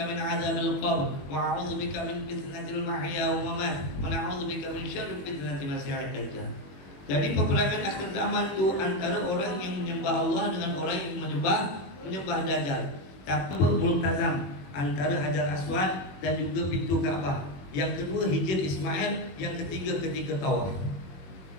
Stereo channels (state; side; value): late; right; 21 ms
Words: min azabil qabr wa a'udzubika min fitnatil mahya wa mamat wa a'udzubika min syarri fitnatil masiihid dajjal. Jadi peperangan akhir zaman tu antara orang yang menyembah Allah dengan orang yang menyembah Dajjal. Tapi multazam antara Hajar Aswad dan juga pintu Kaabah. Yang kedua Hijr Ismail, yang ketiga ketika tawaf.